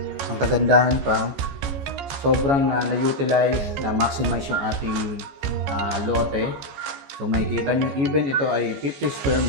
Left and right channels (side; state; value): left; late; 14 ms